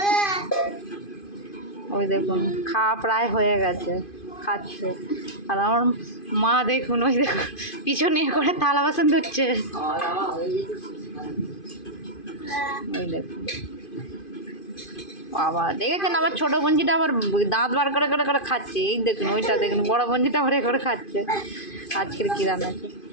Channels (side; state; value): right; late; 2.5 ms